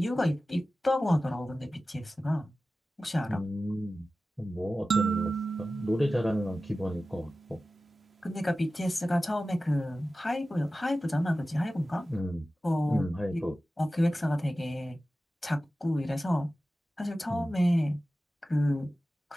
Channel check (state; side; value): normal; both; correlation 0.95